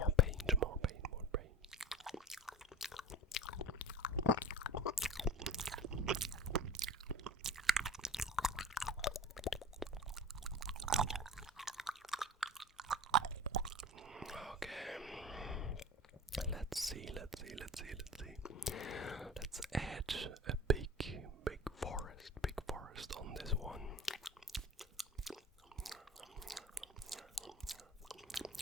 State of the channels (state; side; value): normal; both; correlation 0.37